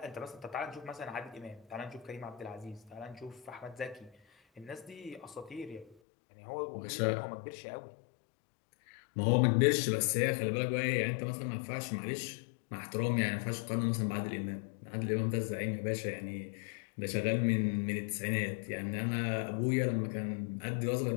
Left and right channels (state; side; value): drops out; right; at 6.0 s